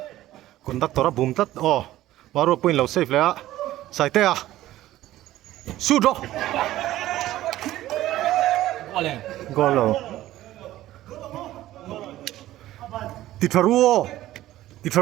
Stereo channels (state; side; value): quieter; left; 14.8 dB